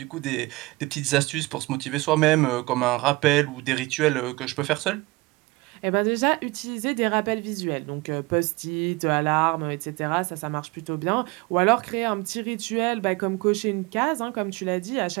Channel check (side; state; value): left; quieter; 22.3 dB